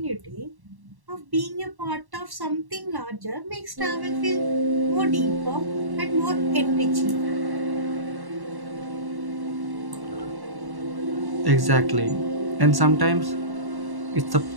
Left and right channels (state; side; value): late; left; 1.1 ms